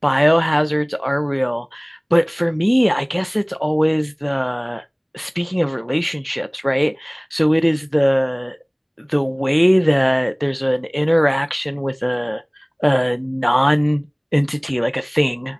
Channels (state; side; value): identical; both; correlation 1.00